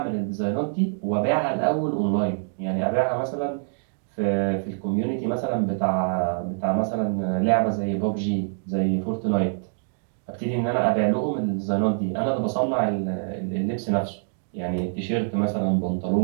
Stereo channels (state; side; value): silent; left; digital silence